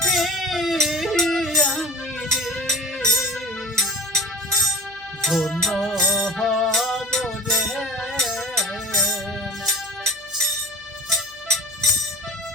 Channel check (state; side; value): noise; left; hum, 29 dB below the sound